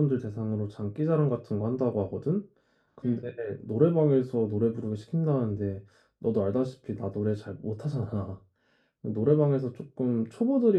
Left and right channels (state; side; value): identical; both; correlation 1.00